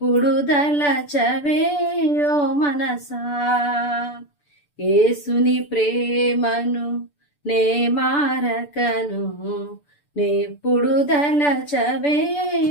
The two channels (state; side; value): late; right; 6.9 ms